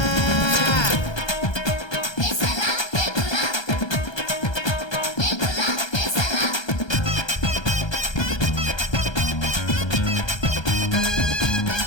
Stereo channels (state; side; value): late; right; 1.3 ms